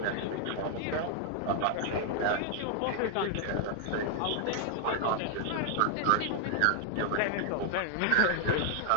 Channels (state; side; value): different; both; correlation 0.00